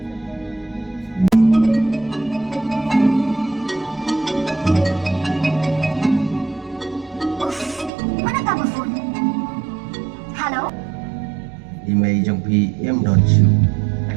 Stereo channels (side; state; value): left; drops out; at 7.9 s